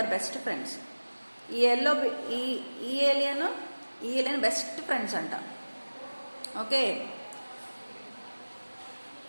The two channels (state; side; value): inverted; both; correlation -1.00